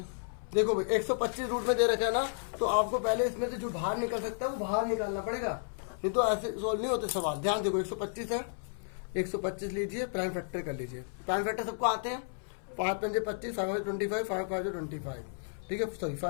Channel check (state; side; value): silent; right; 56 dB below the other